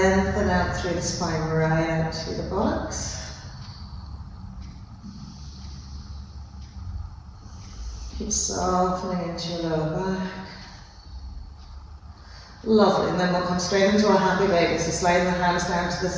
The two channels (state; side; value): identical; both; correlation 1.00